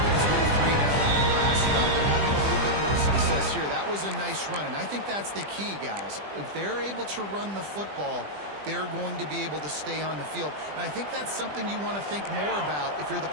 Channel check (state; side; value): late; left; 20 ms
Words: went 3 and out on the last drive. They're having a little bit more success here. That was a nice run, and I think that's the key, guys. If they're able to run the football, they're going to be able to stay on the field. And I think that's something you want to think more about if you're the